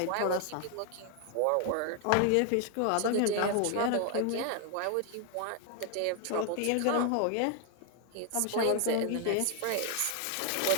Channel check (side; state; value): both; different; correlation 0.00